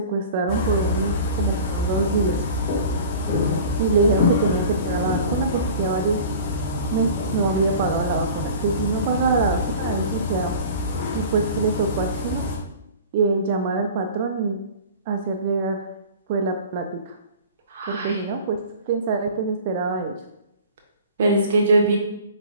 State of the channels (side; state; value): both; inverted; correlation -0.41